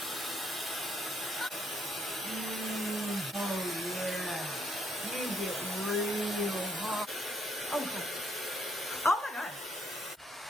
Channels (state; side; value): normal; both; correlation 0.72